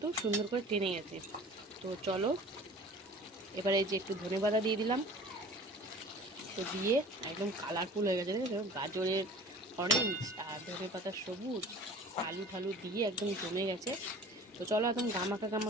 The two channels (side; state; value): both; normal; correlation 0.43